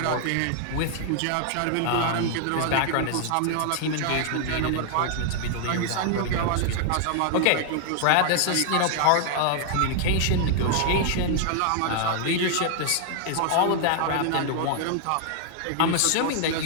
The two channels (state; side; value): different; both; correlation 0.00